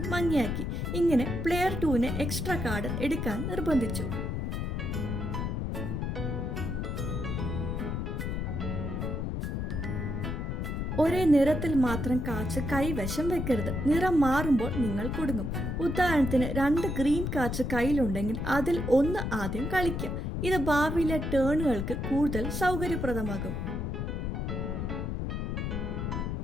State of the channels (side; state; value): left; noise; rumble, 2 dB below the sound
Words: മങ്ങിയാക്കി. ഇങ്ങനെ പ്ലെയർ 2നെ എക്സ്ട്രാ കാർഡ് എടുക്കാൻ നിർബന്ധിച്ചു. ഒരേ നിറത്തിൽ മാത്രം കാർഡ്സ് കൈവശം വെക്കരുത്. നിറം മാറുമ്പോൾ നിങ്ങൾ കുടുങ്ങും. ഉദാഹരണത്തിന് 2 ഗ്രീൻ കാർഡ്സ് കയ്യിലുണ്ടെങ്കിൽ അതിൽ 1 ആദ്യം കളിക്കുക. ഇത് ഭാവിയിലെ ടേണുകൾക്ക് കൂടുതൽ സൗകര്യപ്രദമാകും.